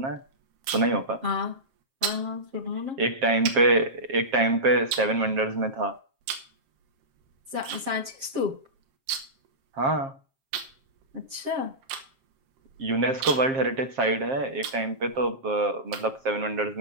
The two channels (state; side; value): late; left; 7.5 ms